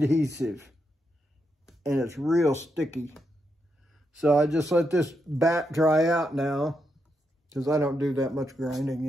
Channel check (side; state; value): both; normal; correlation 0.82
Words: and it's real sticky. So I just let this bat dry out now, because I don't do that much